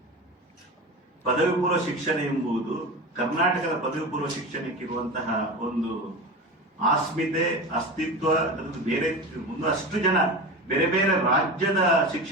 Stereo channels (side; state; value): both; normal; correlation 0.27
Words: ಪದವಿ ಪೂರ್ವ ಶಿಕ್ಷಣ ಎಂಬುದು ಕರ್ನಾಟಕದ ಪದವಿ ಪೂರ್ವ ಶಿಕ್ಷಣಕ್ಕಿರುವಂತಹ ಒಂದು ಆಸ್ಮಿತೆ, ಅಸ್ತಿತ್ವ, ಬೇರೆ ಅಷ್ಟು ಜನ ಬೇರೆ ಬೇರೆ ರಾಜ್ಯದ